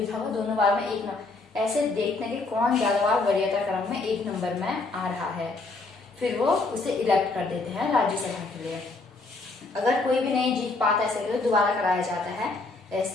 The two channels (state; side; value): quieter; right; 3.5 dB